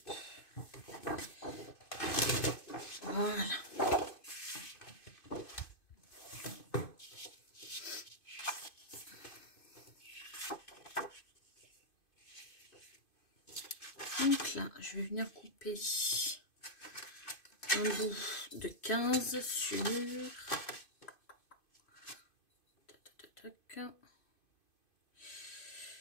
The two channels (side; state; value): right; late; 2.5 ms